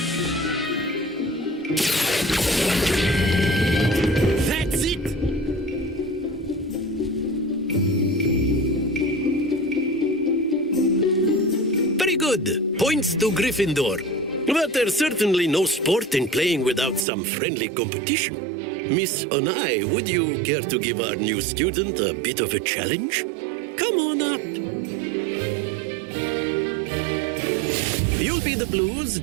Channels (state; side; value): drops out; left; at 17.1 s